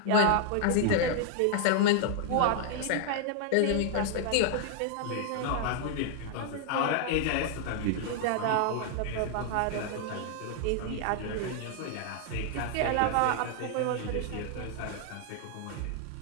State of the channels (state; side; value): different; both; correlation 0.00